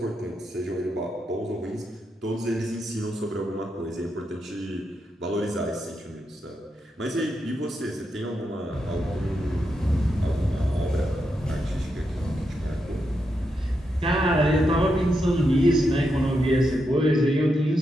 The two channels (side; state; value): both; normal; correlation 0.84